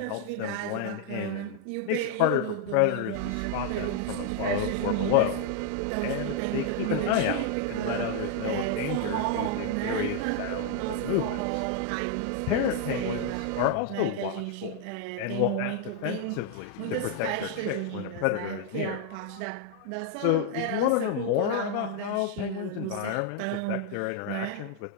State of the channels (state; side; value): different; both; correlation 0.00